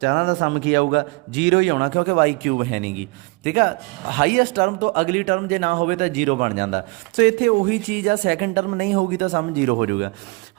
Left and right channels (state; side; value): quieter; left; 26.9 dB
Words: चारों का सम की आऊगा 0 ही आना क्योंकि वाई क्यूब है नहीं गी, ठीक है। हाईएस्ट टर्म तो अगली टर्म जो ना हो तो 0 बन जाता। सो इत्थे उही चीज़ आ सैकेंड टर्म नहीं होगी तो सम 0 हो जाऊगा।